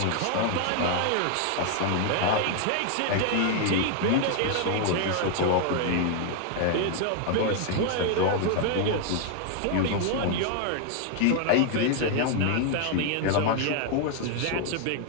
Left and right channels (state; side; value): different; both; correlation 0.00